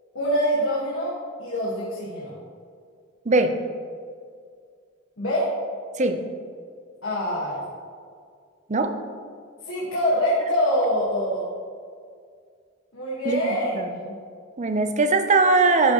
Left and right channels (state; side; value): normal; both; correlation -0.10